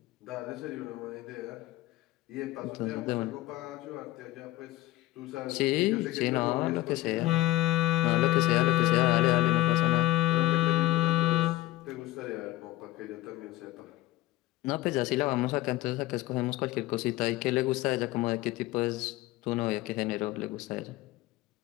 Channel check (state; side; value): quieter; right; 17.1 dB